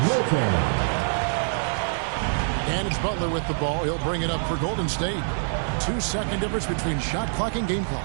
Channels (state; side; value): silent; left; 57 dB below the other